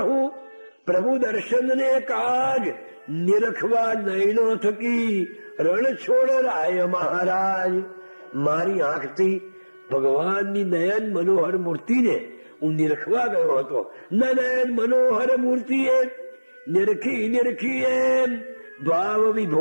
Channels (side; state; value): both; inverted; correlation -1.00